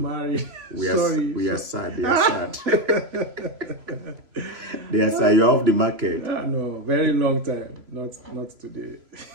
married. We are sad. They are sad. They are sad. You're off the market. No, very long time. Not today.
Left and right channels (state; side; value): late; left; 3.0 ms